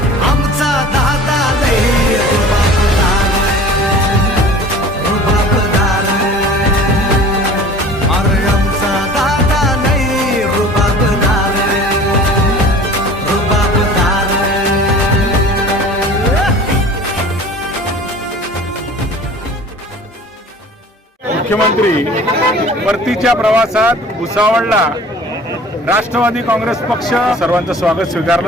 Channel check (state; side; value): normal; both; correlation 0.44